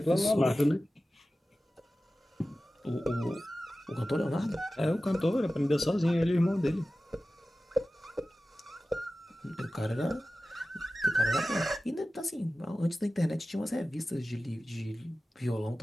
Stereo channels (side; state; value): both; normal; correlation 0.95